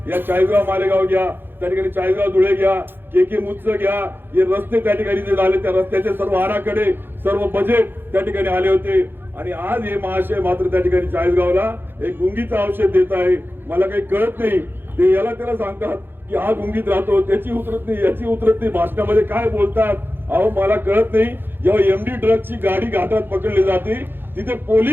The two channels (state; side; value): late; left; 0.10 ms